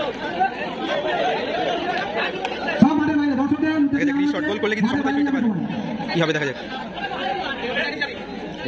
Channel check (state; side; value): identical; both; correlation 1.00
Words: রিশট গোল করলে কিন্তু সমতায় ফিরতে পারবে, কি হবে দেখা যাক।